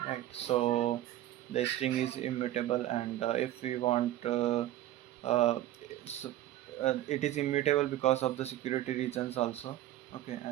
right? So the string is immutable, and if we want uh, so, it is immutable because of the security reasons also. Okay,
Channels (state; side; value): quieter; left; 13.9 dB